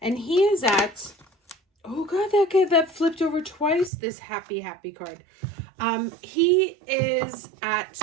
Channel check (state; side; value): drops out; left; at 3.9 s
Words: he is at, oh God, that flipped over twice, this happy card. He is at